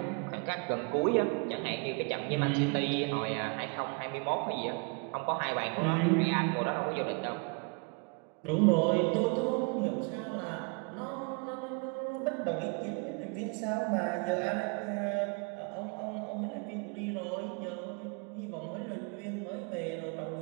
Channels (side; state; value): left; quieter; 34.4 dB